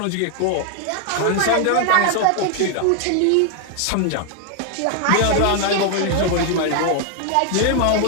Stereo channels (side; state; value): both; different; correlation 0.00